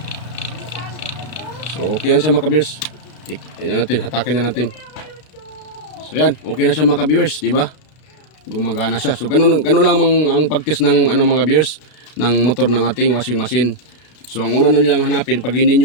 So okay yan siya mga ka-viewers. Yan natin, hatakin na natin. So yan, okay na siya mga ka-viewers, di ba? Gumagana siya. So ganun lang ang pag-test ng ano mga ka-viewers ng motor ng ating washing machine. So ang una nilang hanapin pag hindi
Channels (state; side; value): late; right; 33 ms